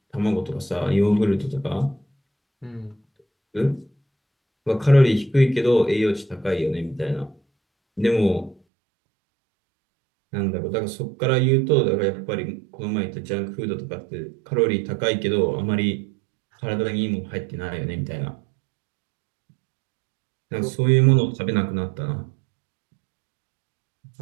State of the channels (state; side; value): drops out; left; at 8.6 s